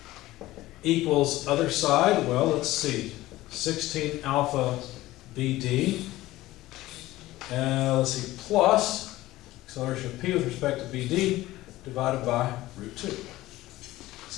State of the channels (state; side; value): quieter; right; 16.9 dB